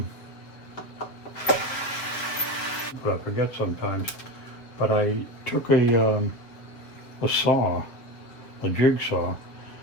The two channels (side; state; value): right; late; 7.2 ms